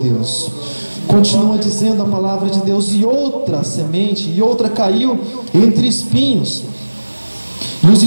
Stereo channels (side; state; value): both; inverted; correlation -1.00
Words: Continua dizendo a palavra de Deus: e outra semente, e outra caiu entre espinhos, e os